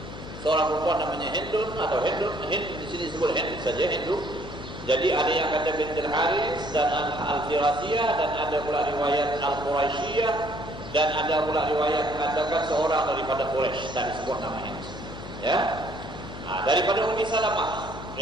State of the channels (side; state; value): left; noise; hum, 12 dB below the sound